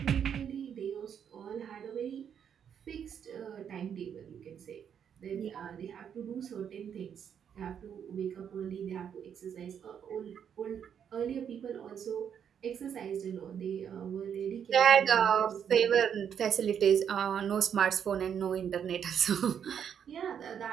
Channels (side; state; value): left; quieter; 8.2 dB